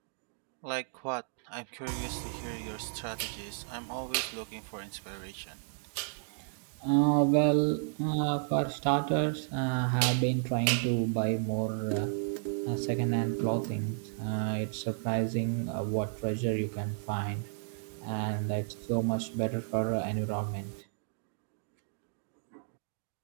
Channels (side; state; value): left; silent; digital silence